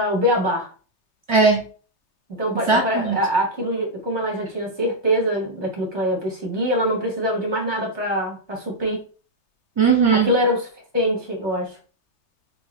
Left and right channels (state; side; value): late; right; 3.3 ms